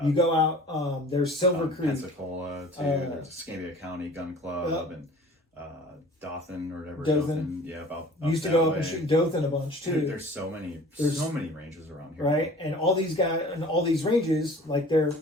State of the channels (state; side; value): normal; both; correlation 0.46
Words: You go out. There's Silver Creek, Pensacola too. There's Escambia County Gun Club and Dothan or whatever. Dothan. Yeah, about used to go up and shoot Dothan a bunch too. There's so many ranges around here. Right, and all these guys and all these ranges, like